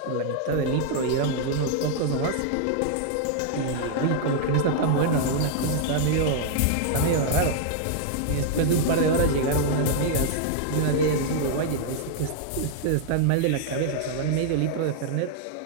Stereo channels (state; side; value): different; both; correlation -0.01